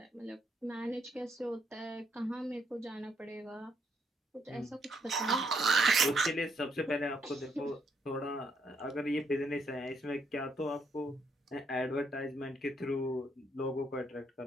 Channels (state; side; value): normal; both; correlation 0.73